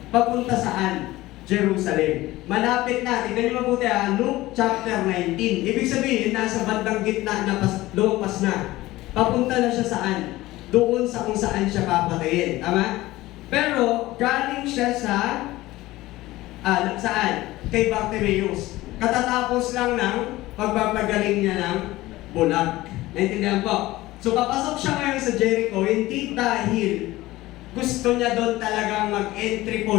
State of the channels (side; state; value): right; quieter; 17.8 dB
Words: Papunta saan? Jerusalem. Malapit na. Tignan niyo mabuti Luke chapter 19. Ibig sabihin, nasa bandang gitna na lumpas na. Papunta na siya saan? Doon sa kung saan siya papatayin. Tama? Pero, galing siya sa saan? Kay Bartimaeus. Katatapos lang ng pagpapagaling niya ng bulag. Naintindihan po? So, papasok siya ngayon sa Jericho, hindi dahil gusto niya doon talagang mag-entry